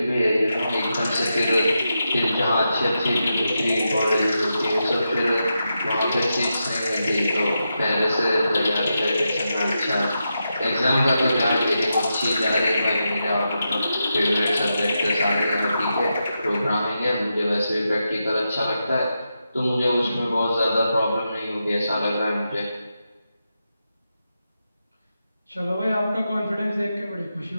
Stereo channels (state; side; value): inverted; both; correlation -0.87